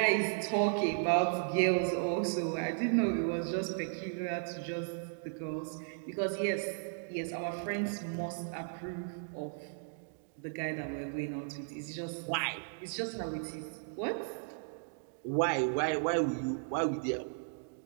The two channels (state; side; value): silent; left; digital silence